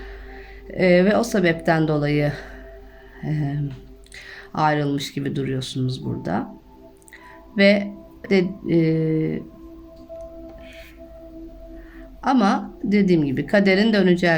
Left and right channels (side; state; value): both; identical; correlation 1.00